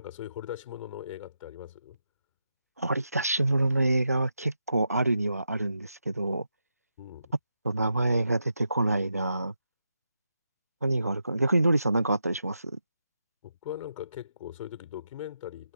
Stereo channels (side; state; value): both; inverted; correlation -0.84